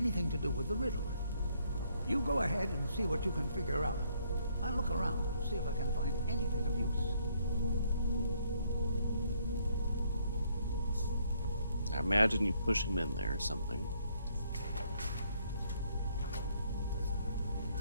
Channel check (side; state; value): both; inverted; correlation -0.69